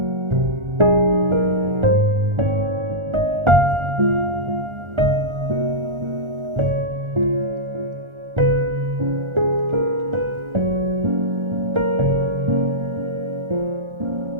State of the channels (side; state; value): left; late; 1.4 ms